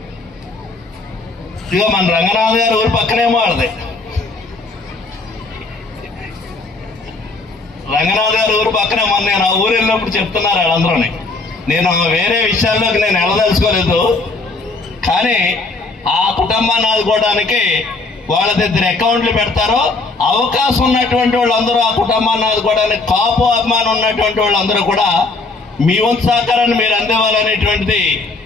ఇక మన రంగనాథ్ గారి ఊరు పక్కనేమో వాళ్ళది, రంగనాథ్ గారి ఊరు పక్కనే. మొన్న నేను ఆ ఊరు వెళ్ళినప్పుడు చెప్తున్నారు వాళ్ళందరూని. నేను వేరే విషయాల్లోకి నేను వెళ్ళదలుచుకోలేదు, కానీ ఆ కుటుంబాన్ని ఆదుకోవడానికి వాళ్ళ దగ్గర అకౌంట్లు పెడతారో అవకాశం ఉన్నటువంటి వాళ్ళందరూ ఆ కుటుంబాన్ని ఆదుకోవడానికి, కాపు అభిమానం ఉన్నటువంటి వాళ్ళందరూ కూడా మీ వంతు సహకారాన్ని మీరు అందివ్వాలనేటువంటిది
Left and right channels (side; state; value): right; quieter; 3.5 dB